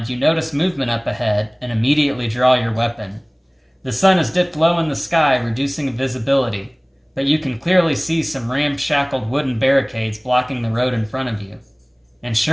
you notice movement up ahead and immediately draw your weapon. The sun has dipped low in the sky, reducing visibility, but you can clearly see some ramshackled wooden barricades blocking the road in front of you. And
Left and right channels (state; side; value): identical; both; correlation 1.00